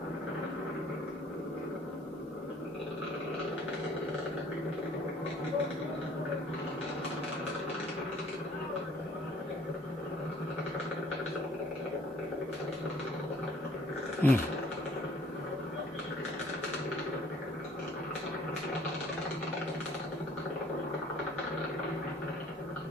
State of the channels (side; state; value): both; normal; correlation 0.56